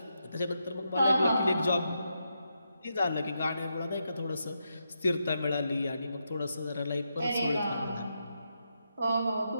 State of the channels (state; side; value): inverted; both; correlation -0.84